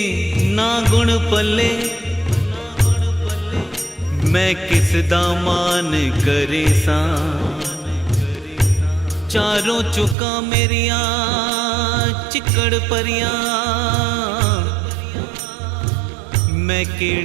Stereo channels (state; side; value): drops out; left; at 10.2 s